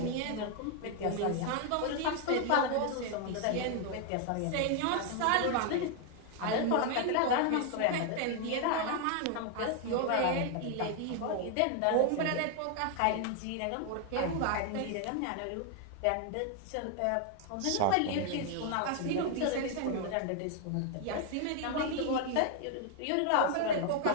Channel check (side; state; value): both; different; correlation 0.00